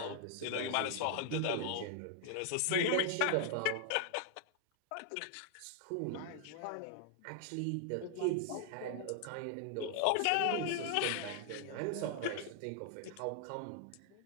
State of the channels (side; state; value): both; different; correlation 0.00